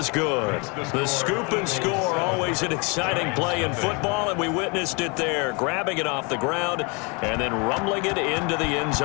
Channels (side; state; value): right; quieter; 31.3 dB